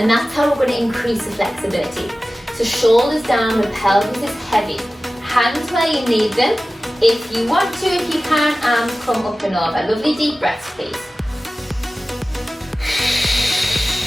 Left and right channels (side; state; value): both; normal; correlation 0.96